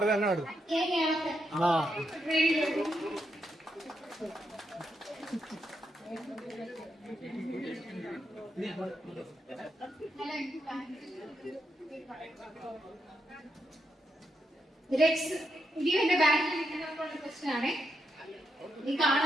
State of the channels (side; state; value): both; normal; correlation 0.81